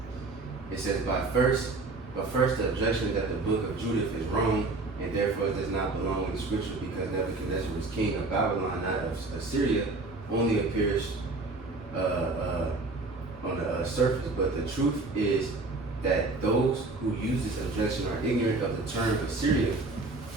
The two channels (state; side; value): quieter; left; 3.4 dB